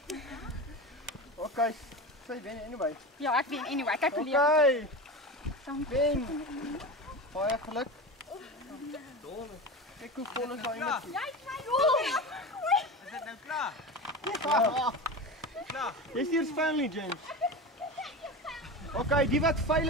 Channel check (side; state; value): both; normal; correlation 0.26